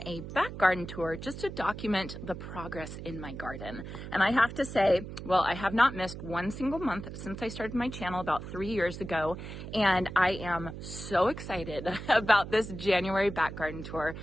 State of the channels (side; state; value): right; noise; hum, 10 dB below the sound